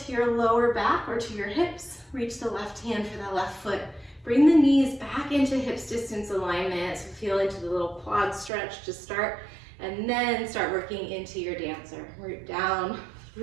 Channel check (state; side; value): drops out; left; at 8.5 s